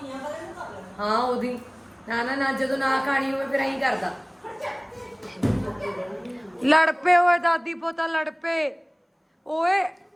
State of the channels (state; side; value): identical; both; correlation 1.00